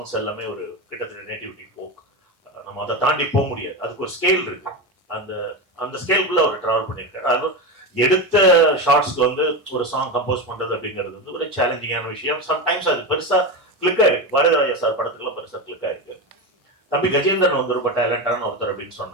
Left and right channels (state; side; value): normal; both; correlation 0.19